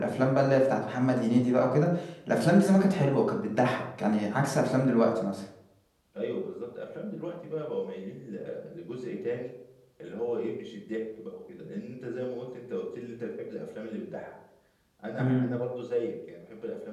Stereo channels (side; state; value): both; identical; correlation 1.00